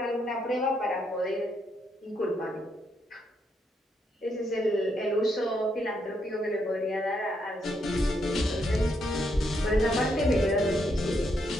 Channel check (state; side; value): normal; both; correlation 0.77